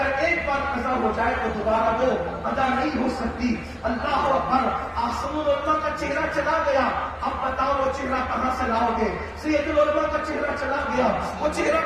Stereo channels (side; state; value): both; identical; correlation 1.00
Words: ایک بار قضا ہو جائے تو دوبارہ وہ ادا نہیں ہو سکتی۔ اللہ اکبر، آسم العلماء کا چہرہ چلا گیا، اب بتاؤ وہ چہرہ کہاں سے لاؤ گے؟ سید العلماء کا چہرہ چلا گیا، وہ چہرہ